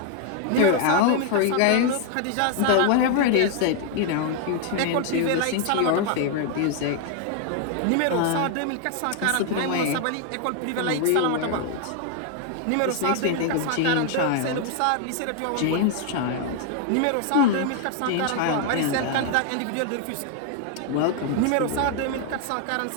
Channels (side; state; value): both; different; correlation 0.00